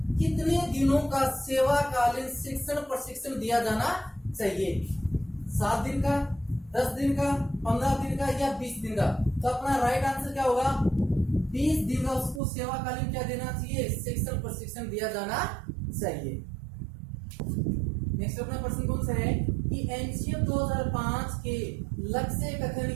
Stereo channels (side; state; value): left; drops out; at 12.4 s